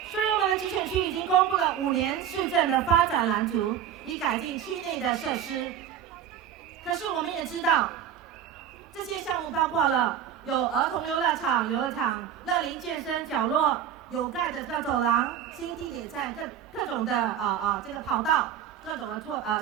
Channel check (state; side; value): quieter; left; 9.4 dB